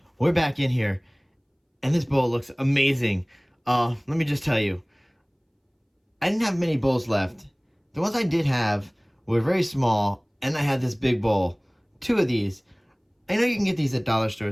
we're back in here, and this bowl looks amazing. Let me just tell you, I didn't have many bowls left. The ones I did have were very small, and I had this big bowl. 2 of these. I know you can get these at dollar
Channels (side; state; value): both; identical; correlation 1.00